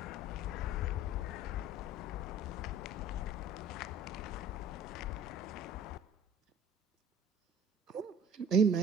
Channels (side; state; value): both; normal; correlation 0.47